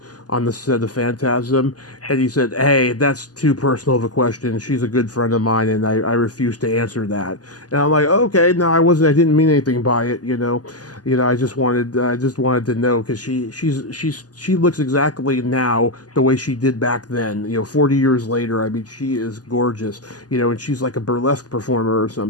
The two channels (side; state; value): right; late; 0.68 ms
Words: the set of Phantasm? And he said, hey, that's too personal of a question. She's a good friend of mine, and I refuse to answer that. And I'm like, okay, no, I didn't mean anything by it, I just wanted to know, because she looks exactly now the way she did back then, 40 years later. I mean, she is gorgeous, and she's like a burlesque performer or